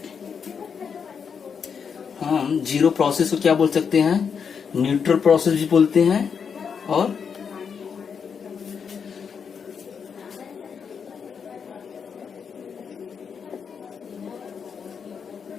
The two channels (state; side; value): quieter; right; 6.6 dB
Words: हम जीरो प्रोसेस को क्या बोल सकते हैं, न्यूट्रल प्रोसेस भी बोलते हैं और